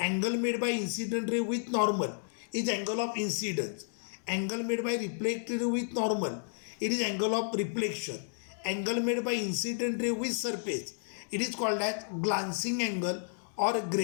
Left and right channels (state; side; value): silent; right; digital silence